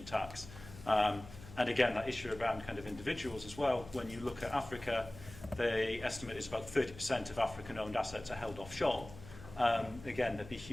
tax. And again, that issue around kind of individuals as well. When you look at Africa, the estimate is about 30% of African-owned assets are held offshore. Again, there'd be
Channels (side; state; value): left; noise; hum, 16 dB below the sound